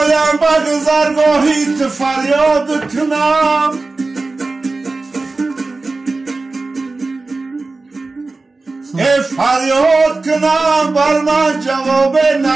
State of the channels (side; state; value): left; quieter; 3.6 dB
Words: به گذرگاهیت فریاد کنم. فریاد کنم بر من جواب